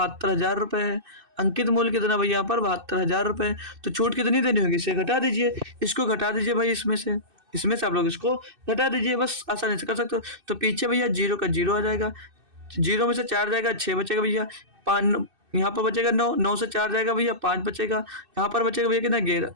रुपये है, अंकित मूल्य कितना भैया यहाँ पर 72,000 रुपये। तो छूट कितनी देनी होगी, इसे घटा दीजिए, इसको घटा दीजिए भाई, इसमें से आप लोग इसको घटा दीजिए, बस आसानी से कर सकते हो। तो पीछे भैया 0 का 0 आ जाएगा, 0 में से 4 जाएगा 6 बचेगा भैया, 5 यहाँ पर बचेगा 9, 9 से 4 जाएगा भैया 5 बचेगा, यहाँ पर बचेगा भैया कितना 11,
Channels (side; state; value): left; late; 2.6 ms